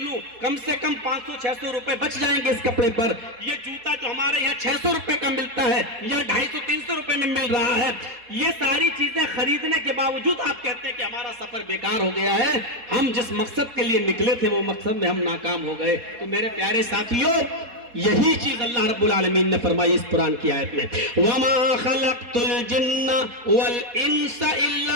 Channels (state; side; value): late; left; 4.2 ms